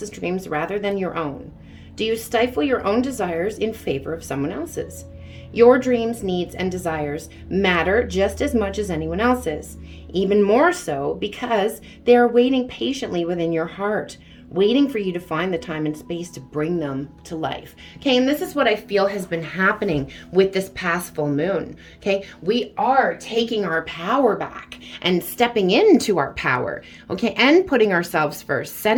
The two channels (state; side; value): identical; both; correlation 1.00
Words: dreams rather than your own? Do you stifle your own desires in favor of someone else's? Your dreams, needs, and desires matter just as much as anyone else's, even more so because they are waiting patiently within your heart, waiting for you to find the time and space to bring them to life. Okay, and this is what I feel has been happening with this past full moon. Okay, we are taking our power back and stepping into our power, okay, and putting ourselves first,